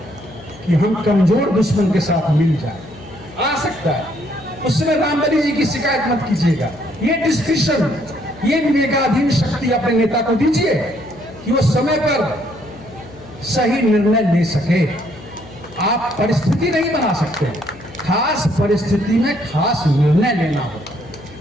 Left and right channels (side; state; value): left; noise; hum, 20 dB below the sound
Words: कि हम कमजोर दुश्मन के साथ मिल जाए, आ सकता है। उस समय रामबली जी की शिकायत मत कीजिएगा। ये डिस्क्रिप्शन, ये विवेकाधीन शक्ति अपने नेता को दीजिए कि वो समय पर सही निर्णय ले सके। आप परिस्थिति नहीं बना सकते, खास परिस्थिति में खास निर्णय लेना